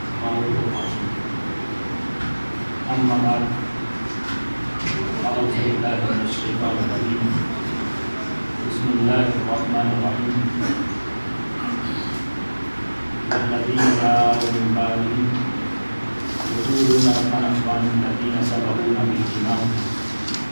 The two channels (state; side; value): inverted; both; correlation -1.00